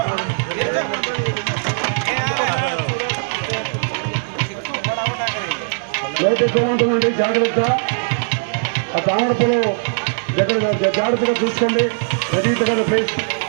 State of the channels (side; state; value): left; silent; digital silence